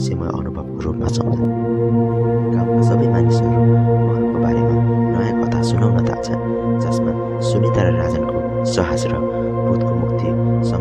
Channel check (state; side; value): identical; both; correlation 1.00